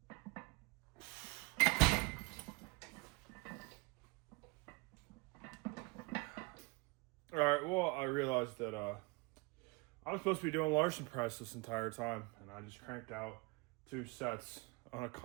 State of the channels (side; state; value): left; quieter; 26.1 dB